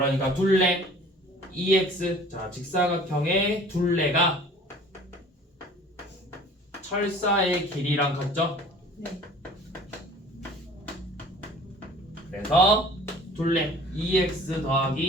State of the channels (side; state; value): both; normal; correlation 0.48